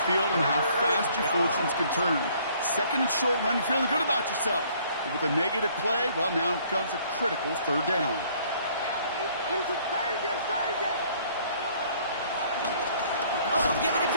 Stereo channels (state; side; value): inverted; both; correlation -0.60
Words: field and how fast your fortunes can turn. 2nd and short run, you're feeling good about yourself. But with a negative play, well, now comes a critical 3rd down. Oh, giving it